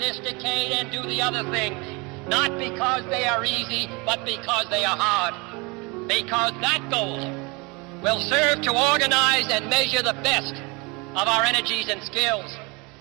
decade and do the other things, not because they are easy, but because they are hard. Because that goal will serve to organize and measure the best of our energies and skills.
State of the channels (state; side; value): quieter; left; 27.9 dB